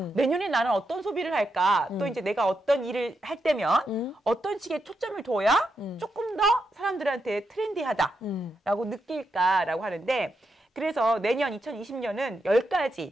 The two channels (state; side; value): normal; both; correlation 0.84